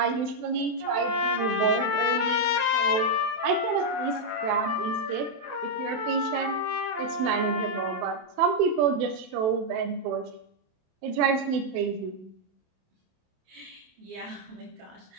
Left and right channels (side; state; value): left; late; 28 ms